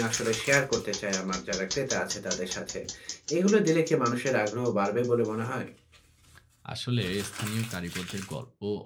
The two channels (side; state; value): both; identical; correlation 1.00